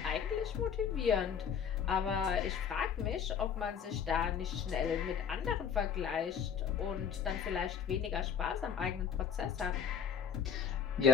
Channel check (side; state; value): right; quieter; 7.6 dB